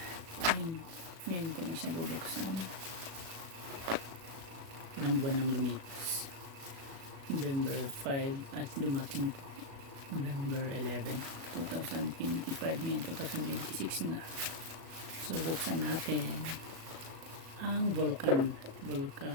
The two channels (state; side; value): late; left; 37 ms